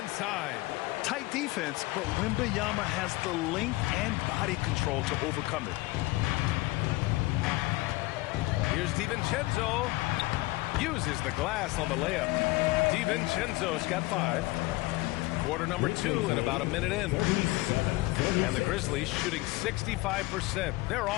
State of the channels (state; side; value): quieter; right; 20.8 dB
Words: Tight defense, but Wembanyama has the length and body control to overcome it. Here's DiVincenzo. Uses the glass on the layup. DiVincenzo's got 5. Quarter number 2 and about a minute in. And the Grizzlies shooting 65%. Their